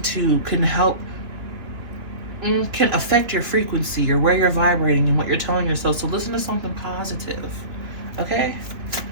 can affect your frequency or where you're vibrating and what you're telling yourself. So listen to something positive, okay?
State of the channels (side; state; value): left; late; 3.2 ms